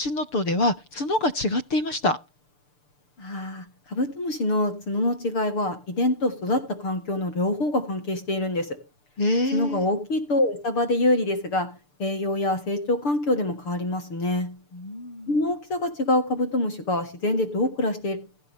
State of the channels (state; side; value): late; right; 6.8 ms